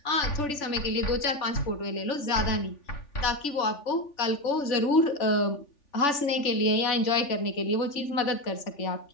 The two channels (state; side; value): late; right; 3.4 ms